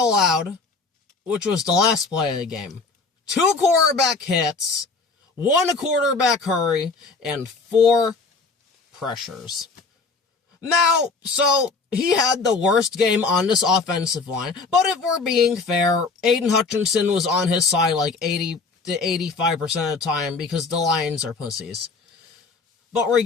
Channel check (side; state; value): right; quieter; 4.2 dB